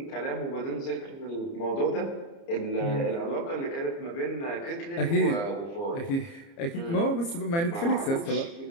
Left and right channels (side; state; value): right; late; 30 ms